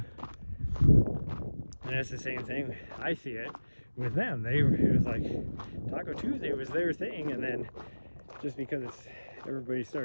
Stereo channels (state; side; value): inverted; both; correlation -1.00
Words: And it's the same thing. I see it with them. It was like Taco Tuesday was their thing, and then just because everybody